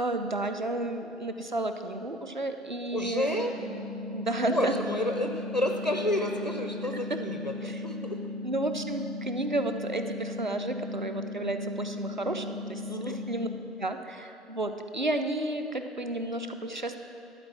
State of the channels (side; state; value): both; normal; correlation 0.43